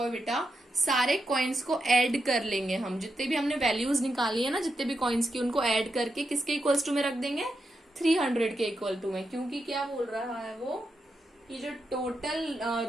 बेटा, सारे कॉइन्स को ऐड कर लेंगे हम, जितने भी हमने वैल्यूज निकाली है ना, जितने भी कॉइन्स की, उनको ऐड करके किसके इक्वल्स टू में रख देंगे, 300 के इक्वल टू में। क्योंकि क्या बोल रहा है वो, ये जो टोटल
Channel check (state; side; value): normal; both; correlation 0.86